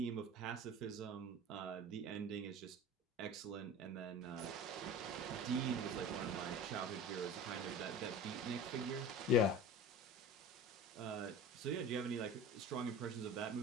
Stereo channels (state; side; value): normal; both; correlation 0.35